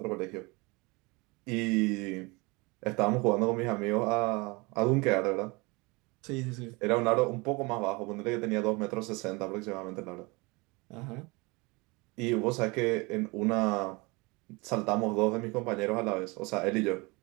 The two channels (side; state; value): left; quieter; 26.1 dB